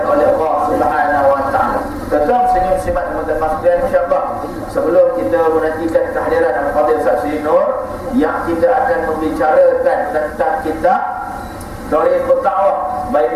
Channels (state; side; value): identical; both; correlation 1.00